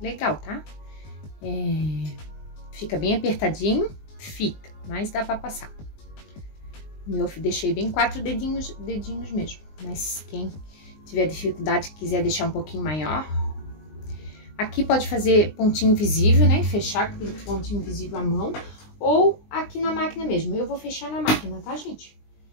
legal, tá? Fica bem apertadinho, fica, mas dá pra passar. Eu deixei bem 4 dedinhos mesmo, mas quem tiver dificuldade, quiser deixar um pouquinho maior. Aqui pode fazer pontinho invisível, né? Fechar com pontinho invisível à mão, ou aqui na máquina mesmo. Eu vou fechar na máquina, tá, gente?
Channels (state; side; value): late; right; 20 ms